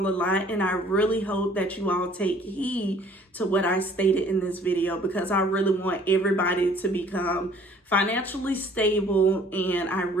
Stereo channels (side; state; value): both; normal; correlation 0.55